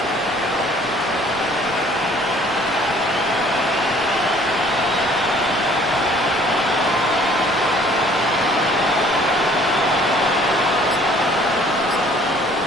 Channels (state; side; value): normal; both; correlation 0.56